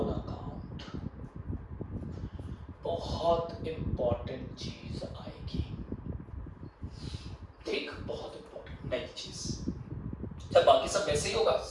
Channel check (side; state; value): both; identical; correlation 1.00